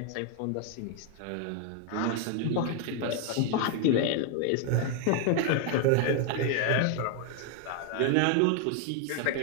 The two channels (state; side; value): different; both; correlation 0.00